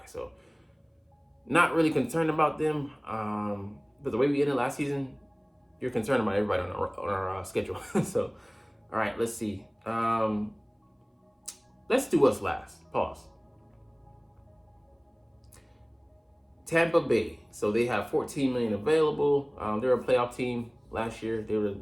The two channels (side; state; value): both; identical; correlation 1.00